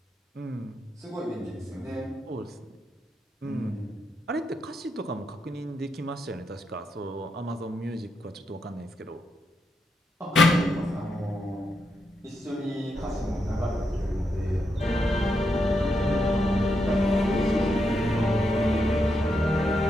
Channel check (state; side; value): normal; both; correlation 0.82